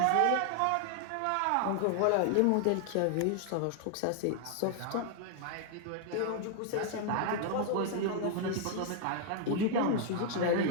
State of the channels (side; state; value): both; different; correlation 0.00